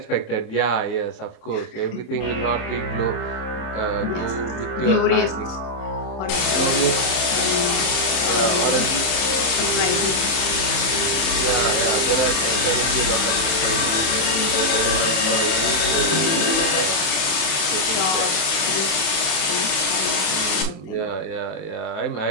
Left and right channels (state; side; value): late; right; 27 ms